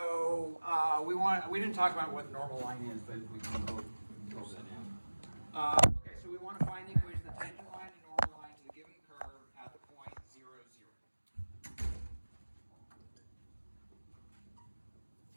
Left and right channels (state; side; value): inverted; both; correlation -1.00